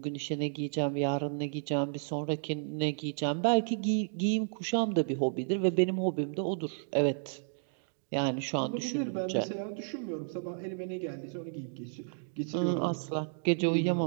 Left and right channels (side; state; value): left; silent; digital silence